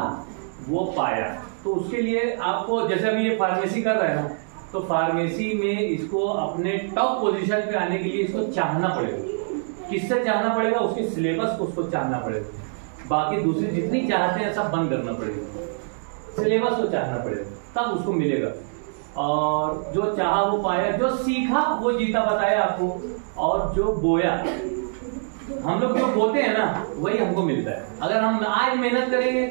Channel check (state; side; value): silent; left; 62 dB below the other